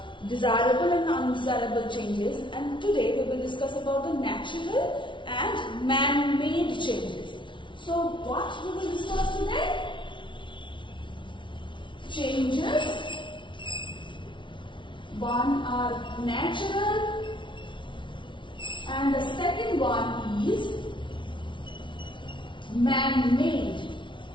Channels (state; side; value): late; right; 0.24 ms